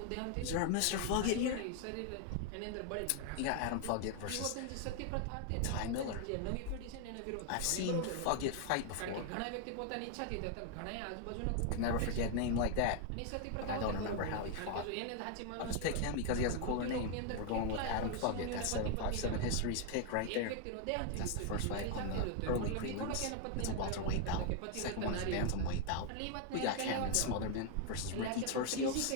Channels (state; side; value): different; both; correlation 0.00